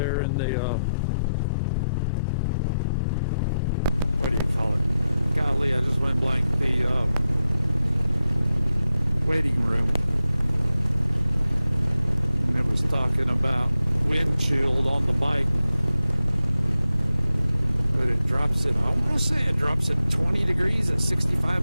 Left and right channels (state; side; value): inverted; both; correlation -0.89